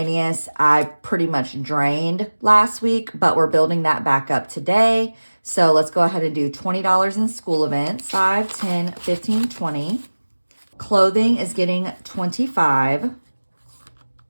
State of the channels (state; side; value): inverted; both; correlation -1.00